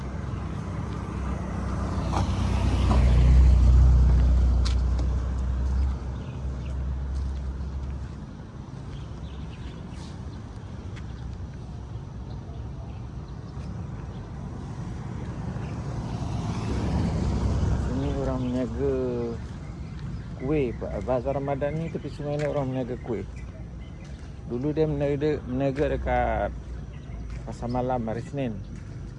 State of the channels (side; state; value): both; identical; correlation 1.00